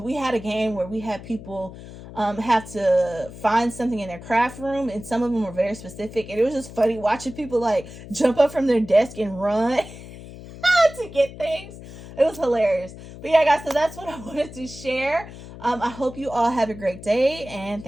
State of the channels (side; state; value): left; noise; hum, 15 dB below the sound